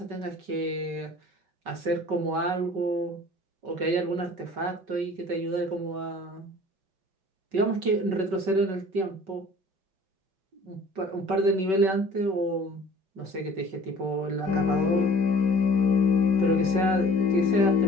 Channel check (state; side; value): late; left; 5.3 ms